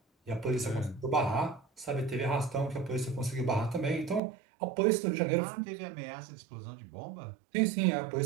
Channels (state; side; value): drops out; left; at 4.2 s